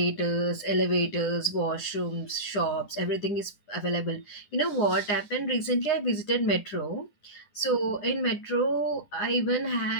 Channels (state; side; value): late; right; 10 ms